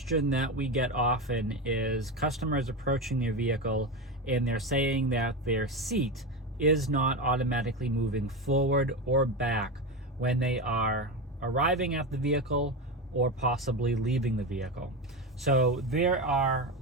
that we get often is customers approaching their vehicle and they're saying that their seat is not automatically moving forward or back when they are arriving at the vehicle or possibly leaving the vehicle. So there are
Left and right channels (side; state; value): both; normal; correlation 0.18